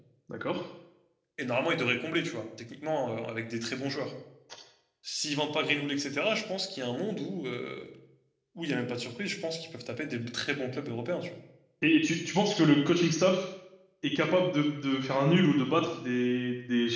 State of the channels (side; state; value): both; identical; correlation 1.00